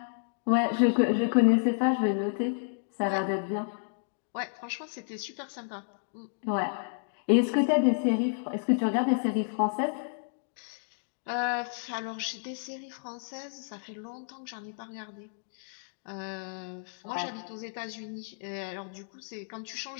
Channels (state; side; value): silent; right; digital silence